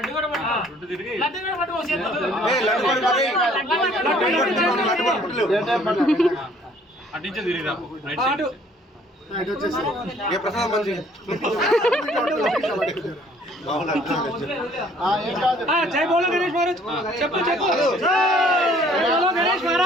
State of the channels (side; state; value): both; normal; correlation 0.58